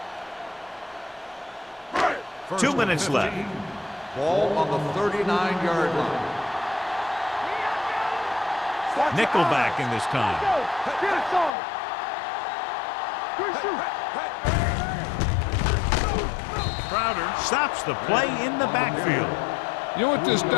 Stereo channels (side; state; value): right; drops out; at 11.5 s